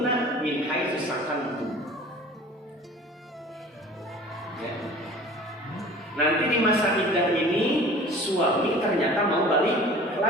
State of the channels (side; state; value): both; normal; correlation 0.44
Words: min haitsu sakantum. Ya. Nanti di masa iddah ini suami ternyata mau balik